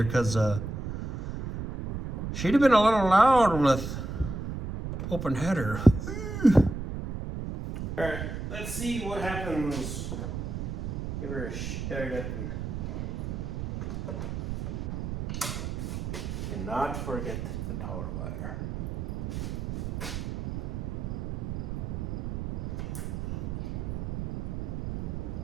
because she'd have been a little loud with open header. All right, let's see what happens. Give her a start up and not forget the power wire.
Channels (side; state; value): right; noise; rumble, 4 dB below the sound